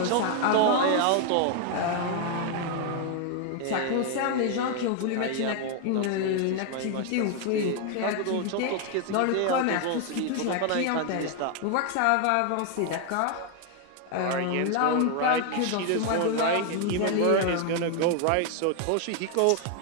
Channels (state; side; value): different; both; correlation 0.00